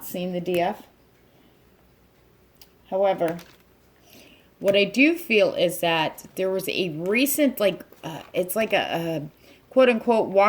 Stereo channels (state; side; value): identical; both; correlation 1.00